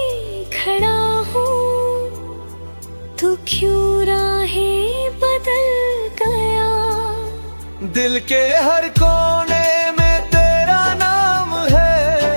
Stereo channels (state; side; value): inverted; both; correlation -1.00